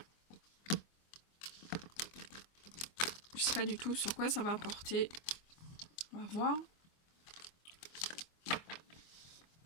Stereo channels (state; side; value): late; right; 24 ms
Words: Je sais pas du tout sur quoi ça va apporter. On va voir.